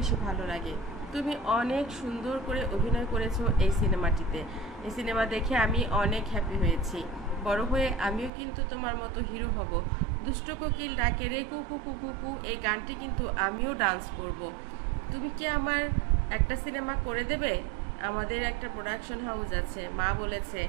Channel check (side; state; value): left; drops out; at 8.3 s